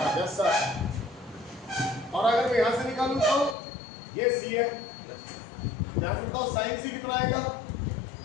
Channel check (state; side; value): drops out; right; at 3.6 s